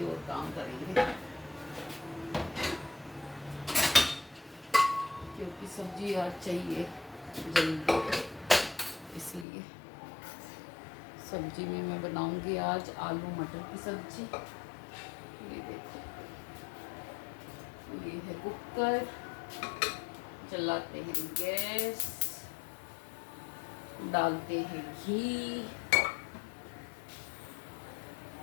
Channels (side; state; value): right; drops out; at 9.5 s